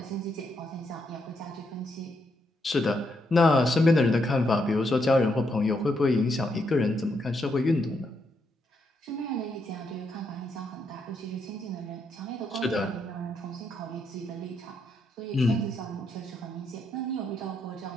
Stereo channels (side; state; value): both; normal; correlation 0.78